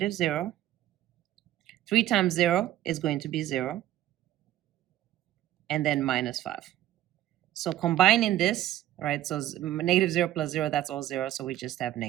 3 times 0 is going to be 0. And then -5. So combining this, right, so -0 plus 0, that's all 0. So we just have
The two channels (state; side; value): quieter; left; 13.5 dB